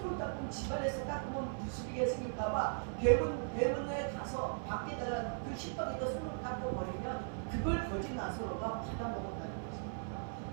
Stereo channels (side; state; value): left; silent; 52 dB below the other